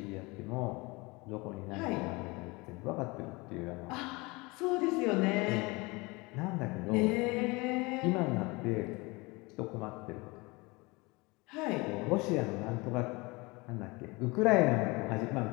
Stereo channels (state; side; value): quieter; right; 25.0 dB